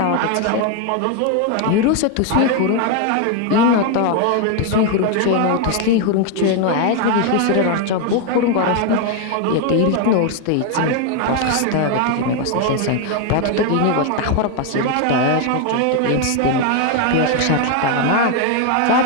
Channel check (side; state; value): both; different; correlation 0.01